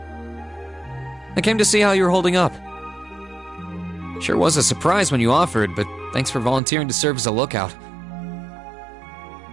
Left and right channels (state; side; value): drops out; left; at 6.6 s